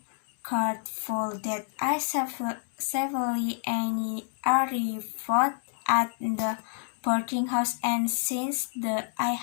grateful that I safely arrived at the boarding house, and since I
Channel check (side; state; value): right; silent; digital silence